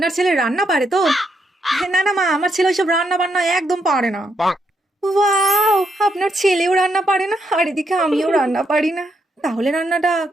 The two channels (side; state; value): both; normal; correlation 0.78